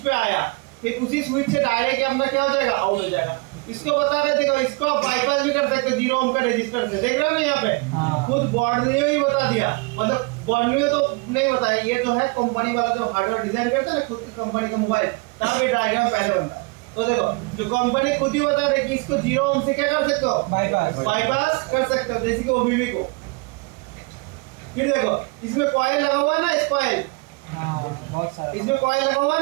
आया, फिर उसी स्विच से डायरेक्ट अपना क्या हो जाएगा? आउट हो जाएगा। इसको बता रहे थे, इसको बाईपास भी कर सकते 0 ओम का रेजिस्टेंस से, देख रहे हो ना यहाँ पे खुद बॉर्डनियो ही बता दिया, मतलब बॉर्डनियो तो नहीं बताया, ये जो है कंपनी वाला जो हार्डवेयर डिजाइन करता है ना खुद की कंपनी का मोबाइल, तब ये डायग्राम पहले बनता है। तो देखो जो कंपनी खुद ही बता रही है कि इसको 0 ओम से क्या कर सकते हो, बाईपास कर सकते हो, जैसे कि ओबीबी को। फिर देखो इसमें कॉइल लगा हुआ है ना, इस कॉइल इसमें कॉइल लगा हुआ है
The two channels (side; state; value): left; quieter; 28.0 dB